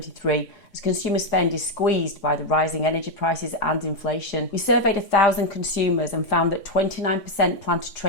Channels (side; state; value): right; late; 3.5 ms